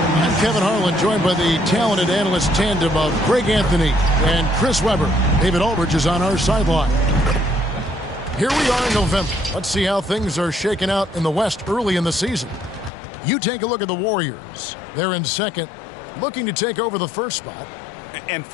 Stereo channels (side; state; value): right; drops out; at 12.9 s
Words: Kevin Harlan, joined by the talented analyst tandem of Greg Anthony and Chris Webber. David Aldridge is on our sideline. Here we are in November. Let's see how things are shaking out in the West early in the season. You take a look at the Warriors. They're in second, looking to take over the first spot. And